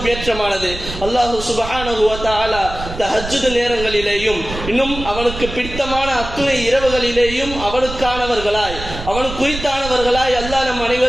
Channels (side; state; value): right; noise; rumble, 10 dB below the sound